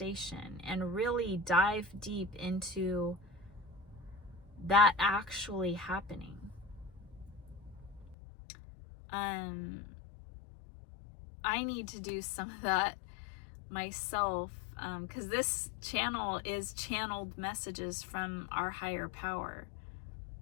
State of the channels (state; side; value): drops out; right; at 8.2 s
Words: and really dive deep into that actually happening. I need to do some of that myself, because this channel is channeled messages from our higher power.